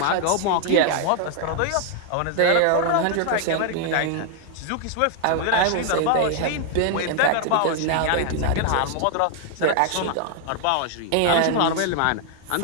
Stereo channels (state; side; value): different; both; correlation 0.00